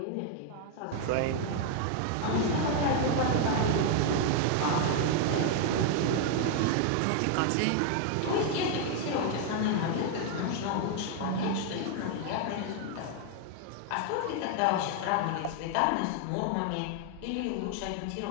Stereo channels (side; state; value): both; different; correlation 0.00